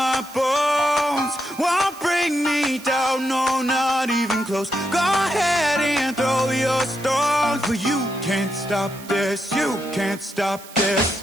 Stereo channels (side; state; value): right; noise; hiss, 18 dB below the sound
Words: bones. Won't bring me down, no, not even close. Go ahead and throw your stones, but you can't stop this. You can't stop this.